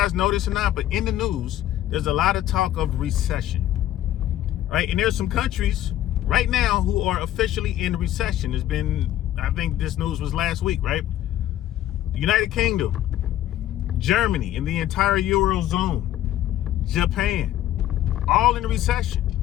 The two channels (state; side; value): quieter; right; 12.9 dB